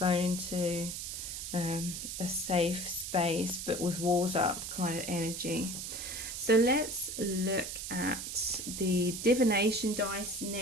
into a safe space but with walls up kind of energy. So let's look at the divination dice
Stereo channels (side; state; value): right; noise; hiss, 6 dB below the sound